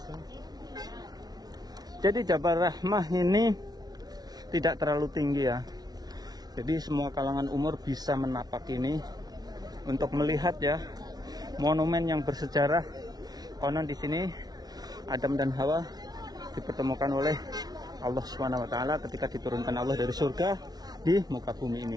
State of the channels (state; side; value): late; left; 0.19 ms